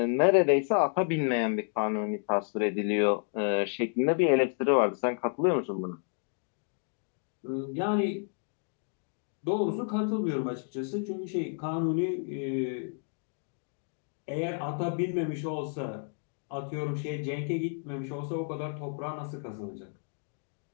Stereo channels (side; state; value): right; silent; 57 dB below the other